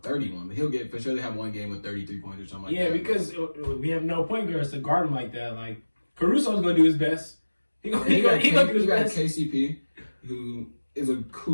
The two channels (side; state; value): both; inverted; correlation -1.00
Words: but he'll get for sure. They have one game with 33 points or something like that. Yeah, because we have no point guards to guard him like that. Like, Caruso's going to do his best. He got KCP, who is a